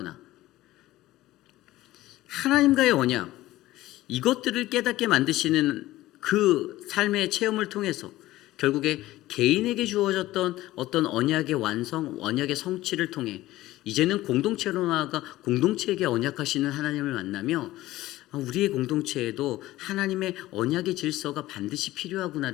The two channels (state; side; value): quieter; right; 16.5 dB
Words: 하나님과의 언약, 이것들을 깨닫게 만드시는 그 삶의 체험을 통해서 결국에 개인에게 주어졌던 어떤 언약의 완성, 언약의 성취를 통해 이제는 공동체로 나아가 공동체에게 언약하시는 하나님을 만나며 우리의 공동체에도 하나님의 언약의 질서가 반드시